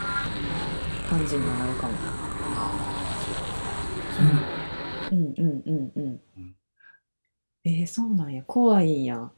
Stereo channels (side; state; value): both; inverted; correlation -1.00